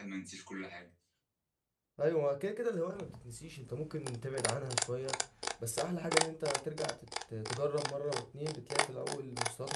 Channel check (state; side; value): identical; both; correlation 1.00